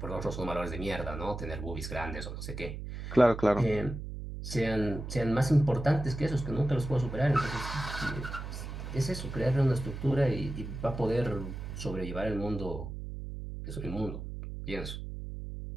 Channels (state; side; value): noise; right; hum, 8 dB below the sound